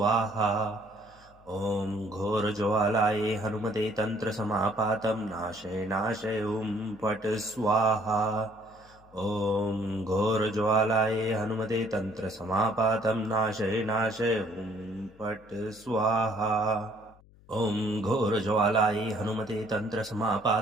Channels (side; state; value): left; noise; hum, 26 dB below the sound